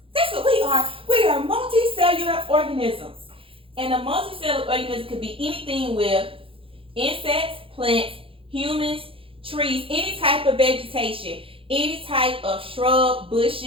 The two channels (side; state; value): left; late; 0.26 ms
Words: That's what we are. We are multicellular organisms. And a multicellular organism could be anything with insects, plants, humans, trees, any type of vegetation, any type of shrub,